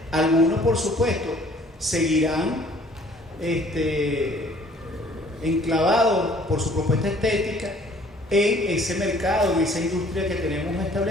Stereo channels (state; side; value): normal; both; correlation 0.56